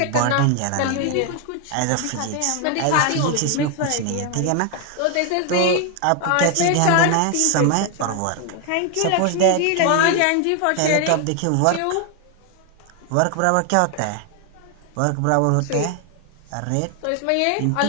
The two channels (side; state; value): both; different; correlation 0.01